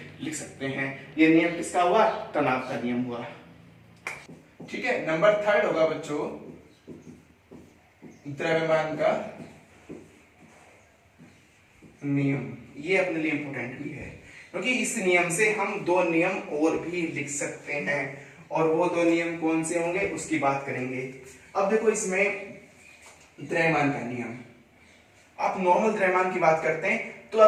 लिख सकते हैं। ये नियम किसका हुआ? तनाव का नियम हुआ। ठीक है, नंबर 3 होगा बच्चों द्रव्यमान का नियम। ये अपने लिए इंपॉर्टेंट भी है क्योंकि इस नियम से हम दो नियम और भी लिख सकते हैं, और वो दो नियम कौन से होंगे उसकी बात करेंगे। अब देखो इसमें द्रव्यमान का नियम, आप नॉर्मल द्रव्यमान की बात करते हैं तो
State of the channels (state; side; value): identical; both; correlation 1.00